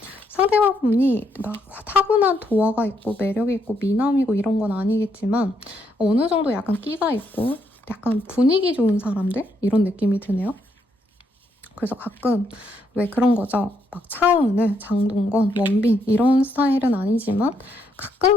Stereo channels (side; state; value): both; normal; correlation 0.75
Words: 상대방분이 막 타고난 도화가 있고 매력이 있고 미남이고 이런 건 아니겠지만 어느 정도 약간 끼가 있고 약간 분위기 좋은 사람들? 이런 느낌이 드네요. 그래서 가끔 왜 그런 거죠. 막 차은우, 장동건, 원빈 이런 스타일은 아니지만